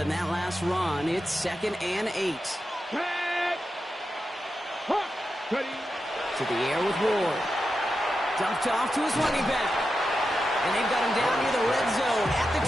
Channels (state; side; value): normal; both; correlation 0.89